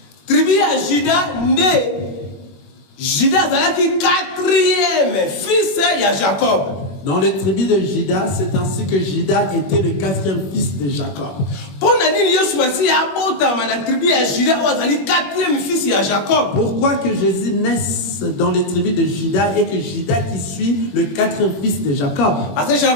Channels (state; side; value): late; right; 21 ms